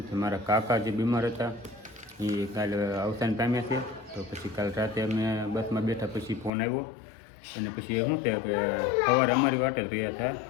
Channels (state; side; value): drops out; right; at 6.5 s